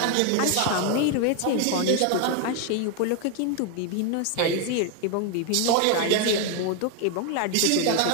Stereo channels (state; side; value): different; both; correlation 0.01